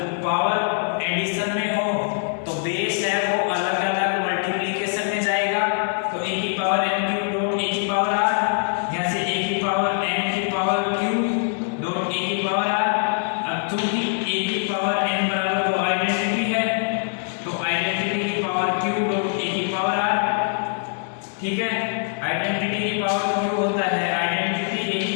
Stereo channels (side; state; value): right; silent; digital silence